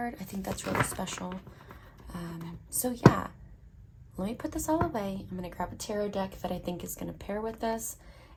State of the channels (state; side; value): identical; both; correlation 1.00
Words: I think that's really special. So yeah, let me put this all away. I'm going to grab a tarot deck that I think is going to pair with this.